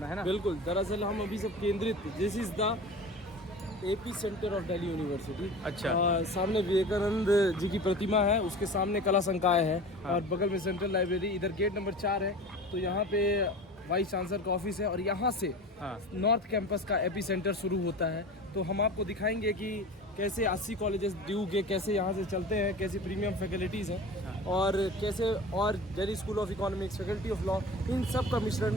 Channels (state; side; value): normal; both; correlation 0.35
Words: है ना? बिल्कुल। दरअसल हम अभी सब केंद्रित, this is the AP centre of Delhi university. अच्छा। सामने विवेकानंद जी की प्रतिमा है, उसके सामने कला संकाय है। हाँ। और बगल में सेंट्रल लाइब्रेरी, इधर गेट नंबर 4 है। तो यहाँ पे वाइस चांसलर का ऑफिस है और यहाँ से हाँ। नॉर्थ कैंपस का एपी सेंटर शुरू होता है। तो हम आपको दिखाएंगे कि कैसे 80 कॉलेजेस ड्यू के कैसे यहाँ से चलते हैं, कैसे प्रीमियम फैकल्टीज़ हैं और कैसे और Delhi school of economics, faculty of law, इन सब का